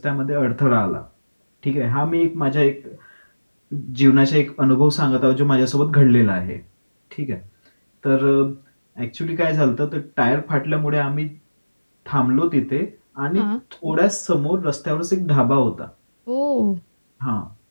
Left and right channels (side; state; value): both; inverted; correlation -1.00